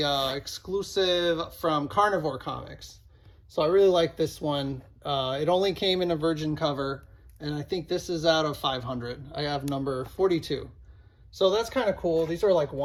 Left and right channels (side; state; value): both; identical; correlation 1.00